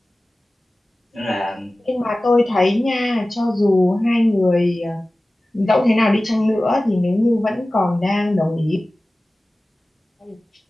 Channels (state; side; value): normal; both; correlation 0.97